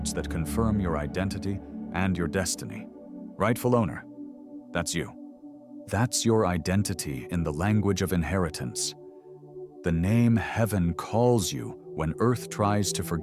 that confirm your identity and your destiny. Rightful owner, that's you. That's your identity in the language of inheritance. The name heaven calls you when earth tries to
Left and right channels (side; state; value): both; identical; correlation 1.00